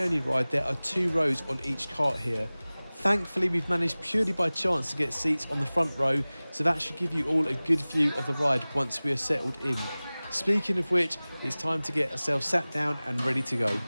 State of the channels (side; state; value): both; inverted; correlation -0.99